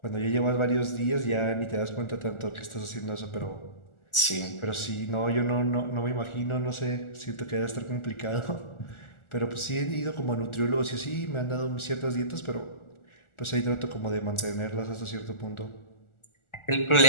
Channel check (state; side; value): late; right; 1.4 ms